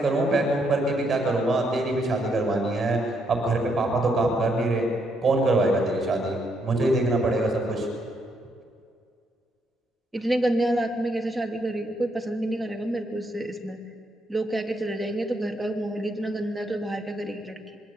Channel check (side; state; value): both; normal; correlation 0.75